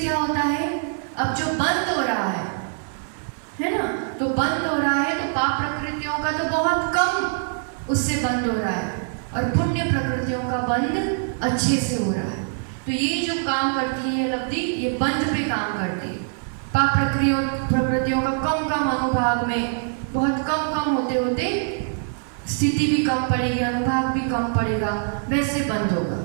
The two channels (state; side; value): silent; left; 58 dB below the other